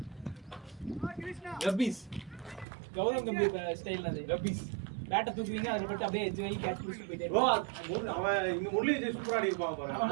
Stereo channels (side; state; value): left; drops out; at 2.7 s